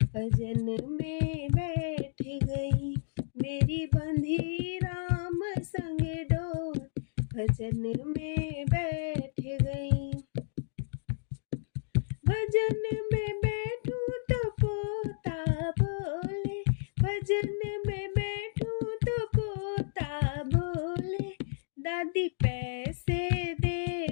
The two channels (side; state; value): right; silent; digital silence